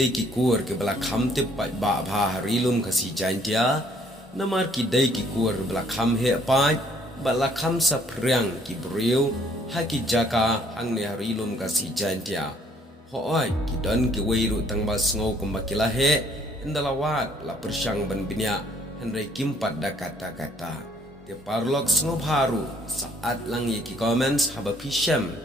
ki kur ke bala kham te pat ba bha harilum kasih jantia. Namar kidai ki kur bala kham he pat bala kham sa priang ki breu ha ki jaka hang ne harilum kasih jantia. Hoai ki don ki weiru tang ba sngau kumbakila he indalawat la persyang ban binya Henry kimpat da kata-kata. Te parlok sngau baru saat lang ye ki comments haba pisham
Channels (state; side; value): normal; both; correlation 0.63